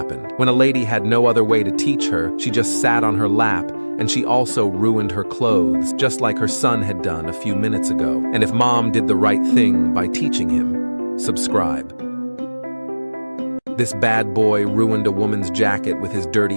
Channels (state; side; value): inverted; both; correlation -1.00